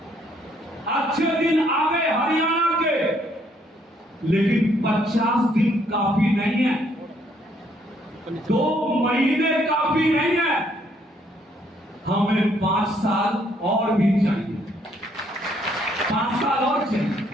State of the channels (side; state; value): both; normal; correlation 0.68